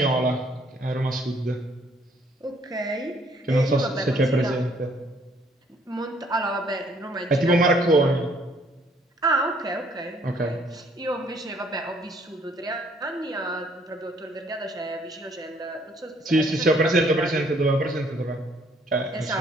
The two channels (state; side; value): normal; both; correlation 0.63